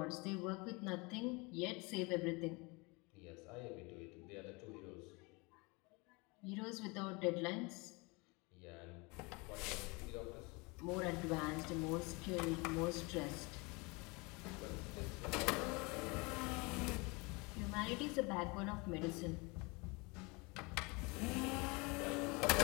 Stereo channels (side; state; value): right; quieter; 27.4 dB